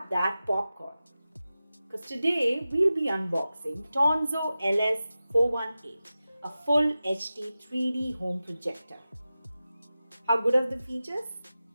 that popcorn. Because today we'll be unboxing Tonzo LS-418, a full HD 3D home projector. How good are the features?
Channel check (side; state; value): both; inverted; correlation -0.94